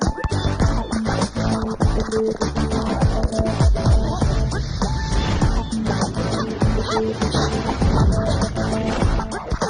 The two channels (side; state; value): both; identical; correlation 1.00